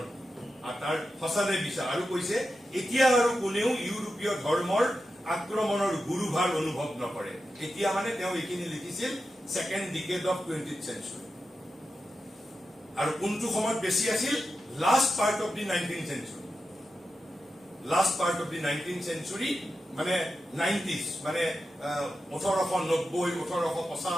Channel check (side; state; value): both; normal; correlation 0.90